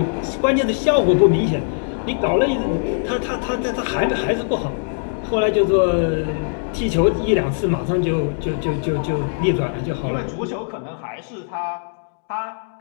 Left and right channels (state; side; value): silent; right; digital silence